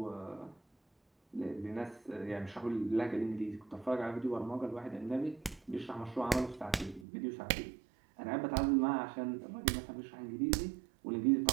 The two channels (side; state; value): left; drops out; at 7.1 s